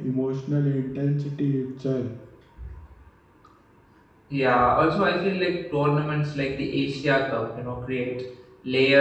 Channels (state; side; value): identical; both; correlation 1.00